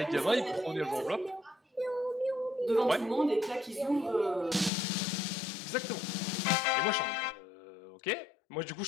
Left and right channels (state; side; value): drops out; right; at 4.7 s